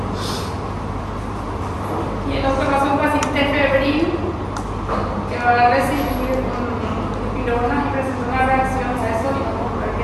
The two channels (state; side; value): identical; both; correlation 1.00